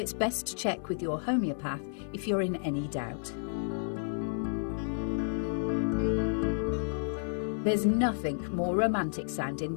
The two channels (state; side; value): silent; right; digital silence